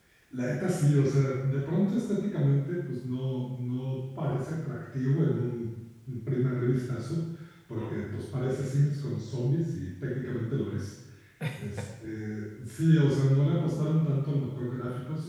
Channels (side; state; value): both; identical; correlation 1.00